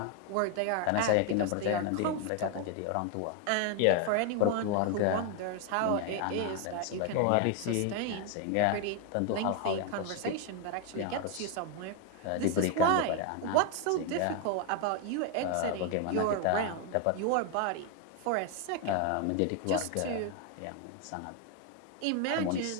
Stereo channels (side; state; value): both; different; correlation 0.01